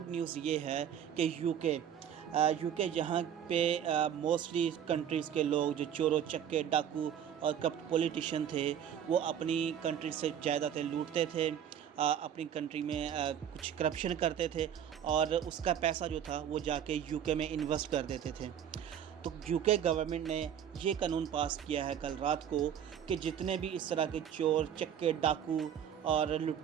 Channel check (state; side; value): quieter; left; 9.2 dB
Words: نیوز یہ ہے کہ یو کے جہاں پہ موسٹلی کنٹریز کے لوگ جو چور و چکے ڈاکو اور کرپٹ پولیٹیشین تھے وہ اپنی کنٹری سے جائیدادیں لوٹتے تھے، اپنی کنٹری میں کچھ کرپشن کرتے تھے اور اس کا پیسہ جو تھا وہ جا کے یو کے میں انویسٹ کر دیتے تھے۔ تو یو کے گورنمنٹ نے یہ قانون پاس کیا ہے کل رات کو کہ جتنے بھی اس طرح کے چور چکے ڈاکو اور